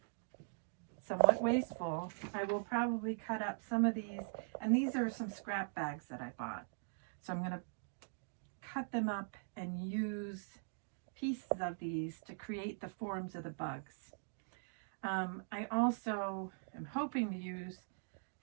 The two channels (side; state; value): left; silent; digital silence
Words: wasteful, I will probably cut up some of these. And these are some scrap bags that I bought. So I'm going to cut them up and use pieces of these to create the forms of the bugs. I also am hoping to use